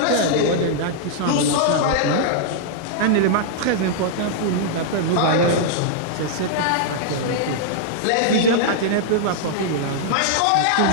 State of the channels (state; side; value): different; both; correlation -0.01